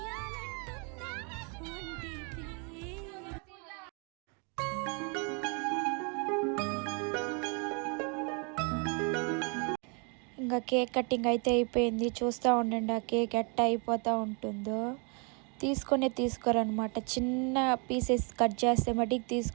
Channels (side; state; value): left; quieter; 35.0 dB